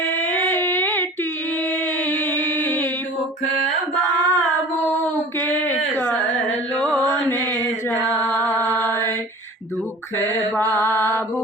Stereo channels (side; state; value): both; normal; correlation 0.41